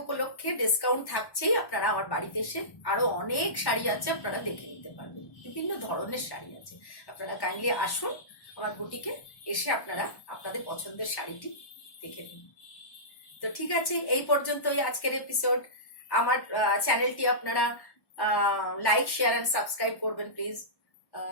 উপলক্ষে ডিসকাউন্ট থাকছেই, আপনারা আমার বাড়িতে এসে আরো অনেক শাড়ি আছে আপনারা দেখে নিতে পারবেন, বিভিন্ন ধরনের শাড়ি আছে। আপনারা কাইন্ডলি আসুন আমার বুটিকে, এসে আপনারা আপনাদের পছন্দের শাড়িটি দেখে নিন। তো ঠিক আছে, এই পর্যন্তই আজকের এপিসোড। আমার চ্যানেলটি আপনারা লাইক, শেয়ার অ্যান্ড সাবস্ক্রাইব করবেন প্লিজ।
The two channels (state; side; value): late; right; 1.1 ms